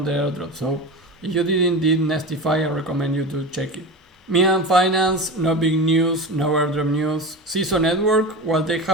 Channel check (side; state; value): both; normal; correlation 0.27